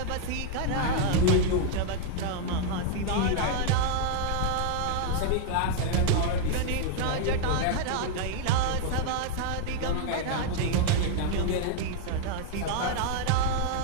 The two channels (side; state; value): both; different; correlation 0.00